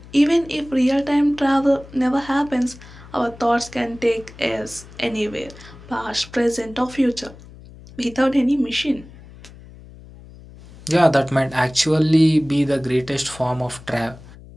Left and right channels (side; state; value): left; noise; hum, 19 dB below the sound